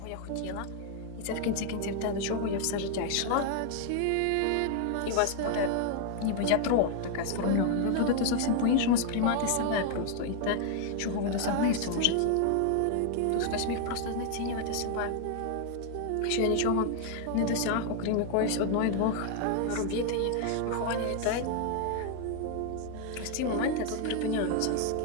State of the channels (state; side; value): different; both; correlation 0.00